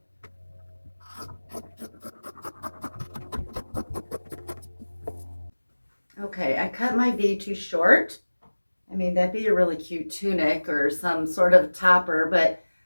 Okay, I cut my V too short. I mean, that'd be a really cute tunic or some sort of topper, but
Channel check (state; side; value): inverted; both; correlation -1.00